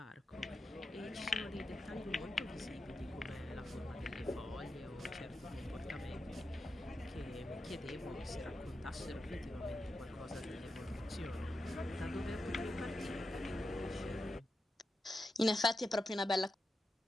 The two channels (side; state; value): both; normal; correlation 0.89